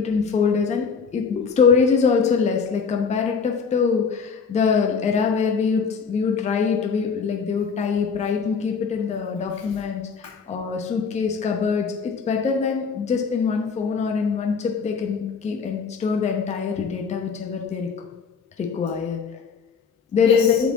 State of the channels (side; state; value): right; quieter; 5.7 dB